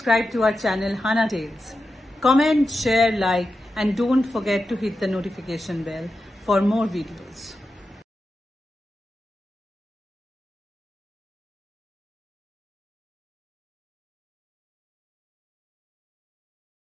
to our channel Hana Tales. Comment, share, like, and don't forget to hit the notification bell for more videos.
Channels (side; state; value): both; normal; correlation 0.90